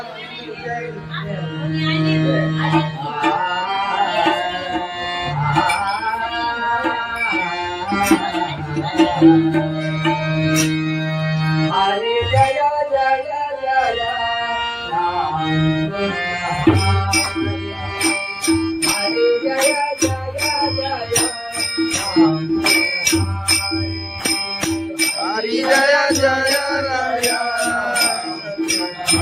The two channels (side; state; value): both; identical; correlation 1.00